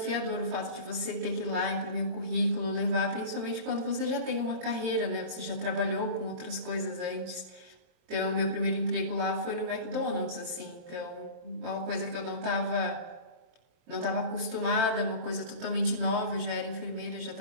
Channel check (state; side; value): late; left; 23 ms